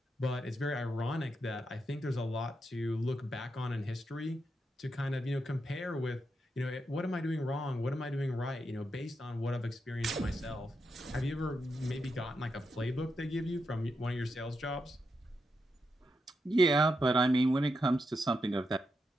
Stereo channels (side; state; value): both; normal; correlation 0.84